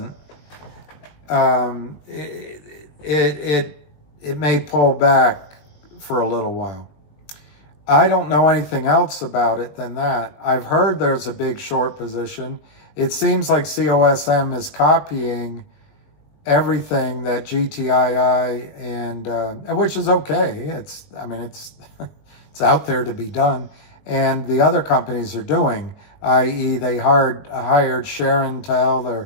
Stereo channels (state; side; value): late; right; 20 ms